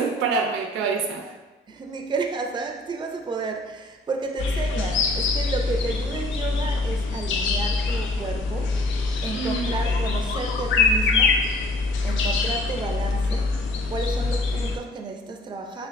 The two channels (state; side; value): normal; both; correlation 0.54